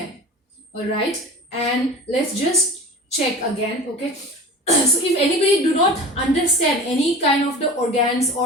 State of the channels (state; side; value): normal; both; correlation 0.36